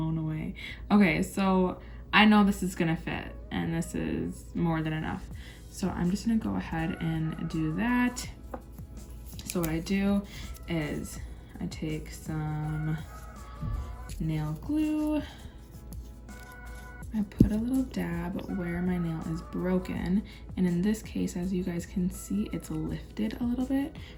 away. Okay, so I know this is gonna fit and this is more than enough. So I'm just gonna go ahead and do that. So what I do is I take some nail glue. I put a little dab where my nail is broken. And in this case, as you guys can see, it's lifted a little bit.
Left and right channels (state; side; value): identical; both; correlation 1.00